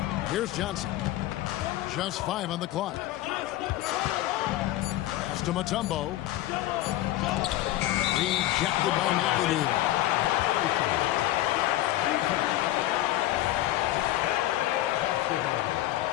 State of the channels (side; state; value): right; quieter; 15.2 dB